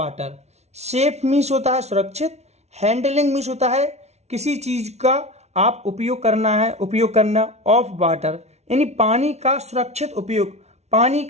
safe means होता है सुरक्षित, हैंडलिंग मीन्स होता है किसी चीज का आप उपयोग करना ऑफ वाटर यानी पानी का सुरक्षित उपयोग, पानी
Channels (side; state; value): left; late; 0.31 ms